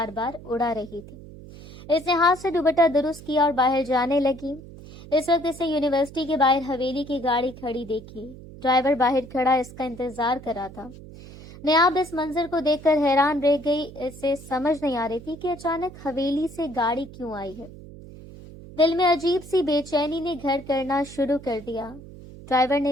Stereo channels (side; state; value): right; noise; hum, 17 dB below the sound